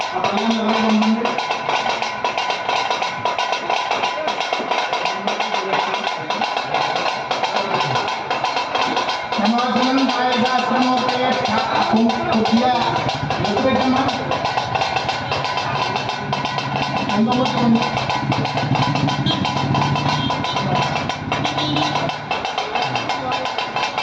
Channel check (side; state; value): both; identical; correlation 1.00